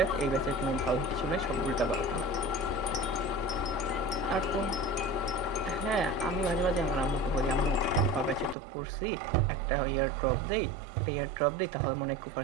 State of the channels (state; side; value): drops out; left; at 8.6 s